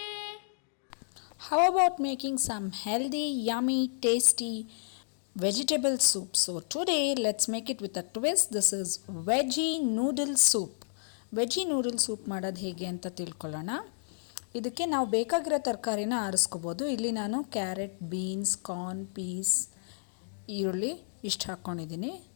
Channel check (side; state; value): right; silent; digital silence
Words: How about making some healthy, yummy, tasty vegetable soup? So today let's make it with a twist. This is Veggie Noodle Soup. Veggie Noodle Soup ಮಾಡೋದು ಹೇಗೆ ಅಂತ ತಿಳ್ಕೊಳ್ಳೋಣ. ಇದಕ್ಕೆ ನಾವು ಬೇಕಾಗಿರೋ ತರಕಾರಿನ ಆರಿಸ್ಕೋಬೋದು. ಇಲ್ಲಿ ನಾನು ಕ್ಯಾರೆಟ್, ಬೀನ್ಸ್, ಕಾರ್ನ್, ಪೀಸ್, ಈರುಳ್ಳಿ ಇಷ್ಟು ಹಾಕ್ಕೊಂಡಿದ್ದೀನಿ.